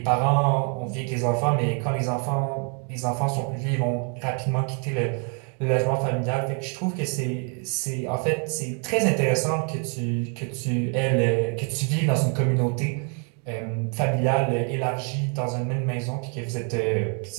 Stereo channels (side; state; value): left; quieter; 39.3 dB